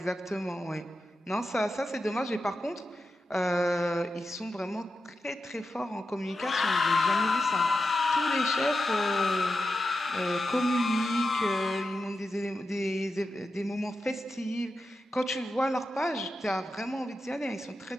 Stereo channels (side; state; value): both; normal; correlation 0.89